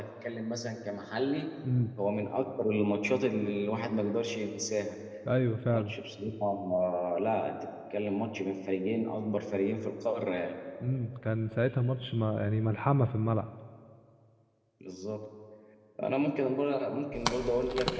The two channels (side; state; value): both; identical; correlation 1.00